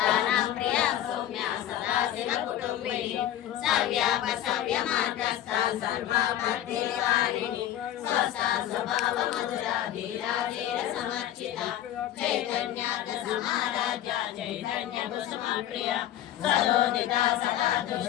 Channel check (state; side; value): quieter; right; 12.0 dB